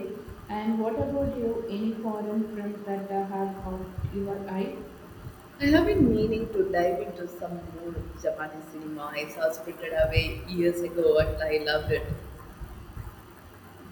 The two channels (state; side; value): identical; both; correlation 1.00